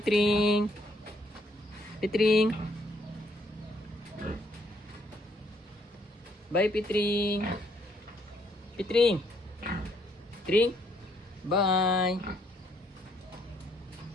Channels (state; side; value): normal; both; correlation 0.70